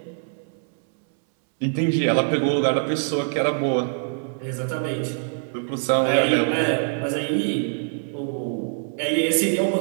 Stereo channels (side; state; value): left; silent; 63 dB below the other